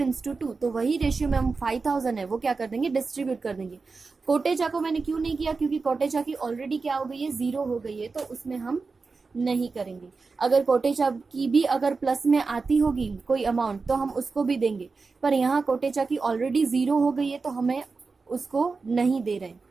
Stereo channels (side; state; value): left; quieter; 4.3 dB